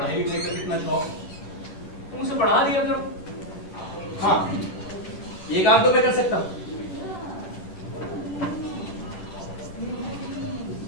लिखाई का कितना शौक, तुम उसे पढ़ा दिया करो। हाँ, ये काम तो मैं कर सकता हूँ।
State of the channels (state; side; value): late; right; 11 ms